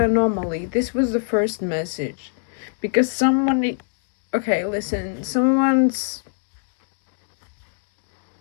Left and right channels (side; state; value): right; silent; digital silence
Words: This was the first message. Because someone, okay, listen, someone's